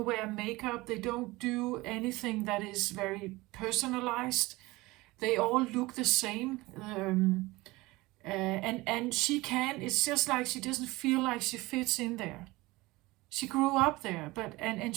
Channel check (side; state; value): left; quieter; 20.9 dB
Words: wear makeup. They don't do anything that is very personalized. They all look the same. And she can. It's just like she doesn't feel like she fits in there. She grew up there, but and